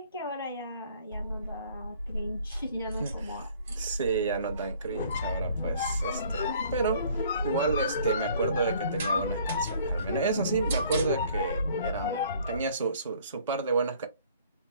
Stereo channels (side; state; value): both; inverted; correlation -0.56